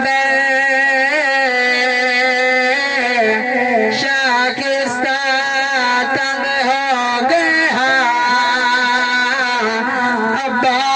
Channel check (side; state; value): both; identical; correlation 1.00